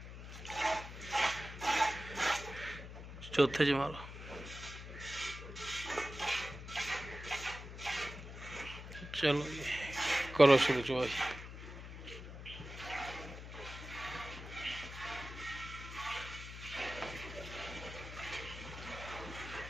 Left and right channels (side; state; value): left; noise; hum, 11 dB below the sound